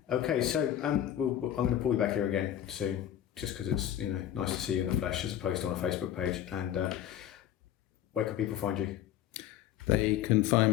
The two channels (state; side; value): quieter; right; 11.2 dB